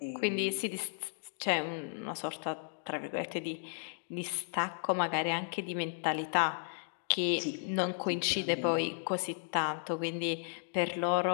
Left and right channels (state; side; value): silent; right; digital silence